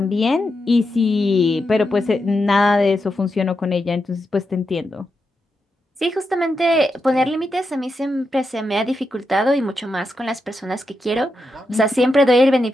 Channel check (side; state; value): both; normal; correlation 0.86